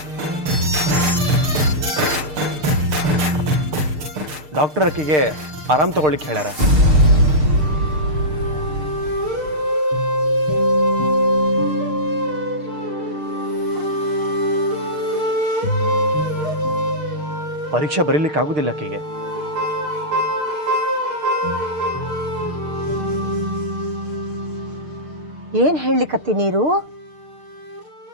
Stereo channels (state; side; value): late; left; 6.6 ms